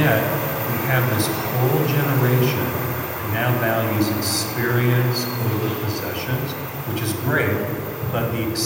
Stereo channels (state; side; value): identical; both; correlation 1.00